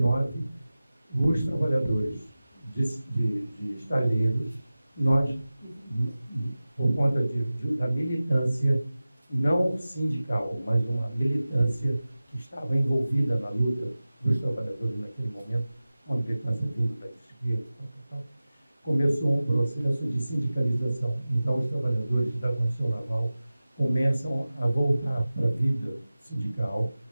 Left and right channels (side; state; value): both; inverted; correlation -0.96